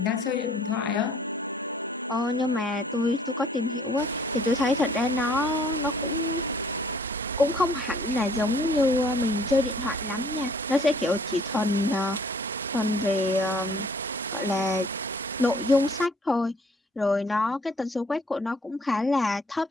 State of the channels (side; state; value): both; normal; correlation 0.58